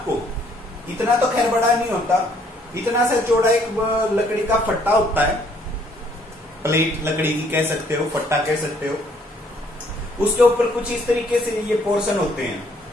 इतना तो खैर बड़ा नहीं होता, इतना सा चौड़ा एक लकड़ी का फट्टा होता है। प्लेट लकड़ी की कह सकते हो, फट्टा कह सकते हो। उसके ऊपर कुछ इस तरीके से ये पोर्शन होते हैं।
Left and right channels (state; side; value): normal; both; correlation 0.64